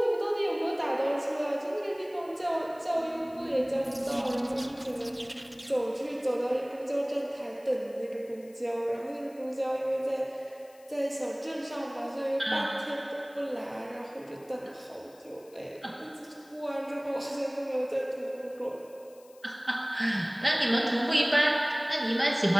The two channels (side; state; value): left; noise; hiss, 27 dB below the sound